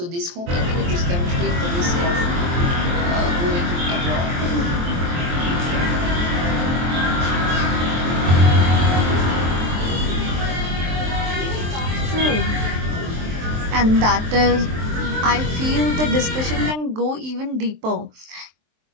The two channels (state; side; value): late; left; 23 ms